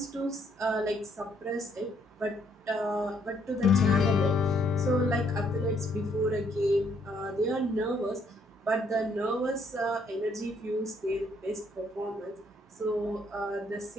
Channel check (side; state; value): both; normal; correlation 0.69